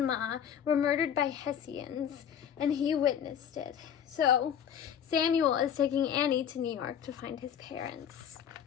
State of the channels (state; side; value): quieter; right; 8.8 dB